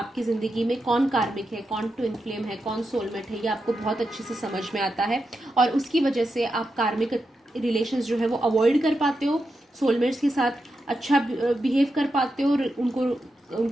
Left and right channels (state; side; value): normal; both; correlation 0.87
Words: ज़िंदगी में कौन कार्मिक है, कौन ट्विन फ्लेम है, कौन सोलमेट है, ये आपको बहुत अच्छे से समझ में आता है। और उसकी वजह से आप कार्मिक रिलेशंस जो है वो अवॉइड कर पाते हो, सोलमेट्स के साथ अच्छा बिहेव कर पाते हो,